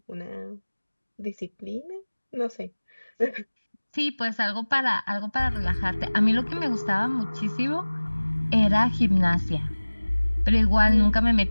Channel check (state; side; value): inverted; both; correlation -1.00